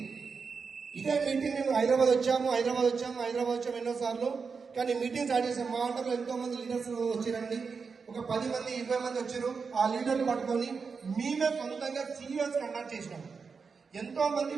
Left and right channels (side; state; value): left; quieter; 5.3 dB